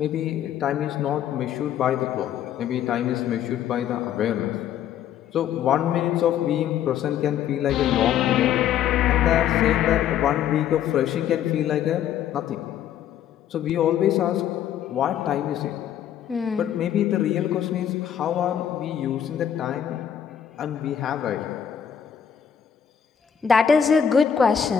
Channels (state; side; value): quieter; right; 9.3 dB